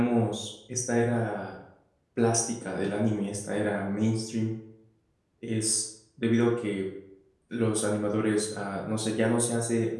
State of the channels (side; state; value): both; identical; correlation 1.00